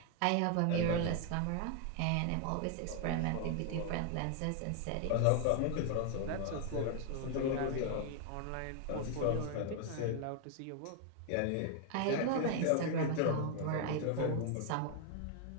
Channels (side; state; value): both; different; correlation 0.00